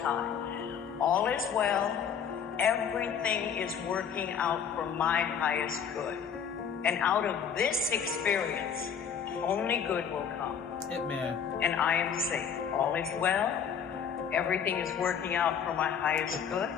time. All is well. Everything is working out for my highest good. And out of this experience, only good will come. Hitman. And I am safe. All is well. Everything is working out for my highest good.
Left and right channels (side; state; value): right; quieter; 7.5 dB